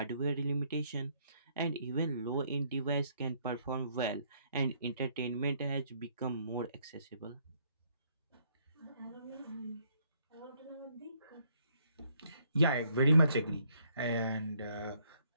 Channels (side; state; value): both; inverted; correlation -0.69